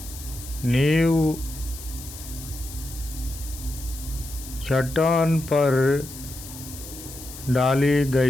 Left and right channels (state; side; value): noise; left; hiss, 14 dB below the sound